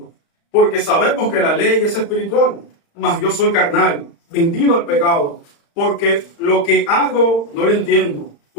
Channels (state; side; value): late; right; 35 ms